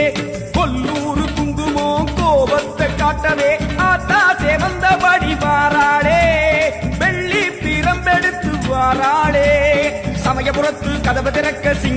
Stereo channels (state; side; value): identical; both; correlation 1.00